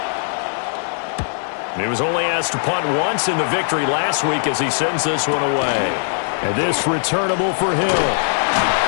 He was only asked to punt once in the victory last week as he sends this one away. And this returnable for Hill.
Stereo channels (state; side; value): silent; right; digital silence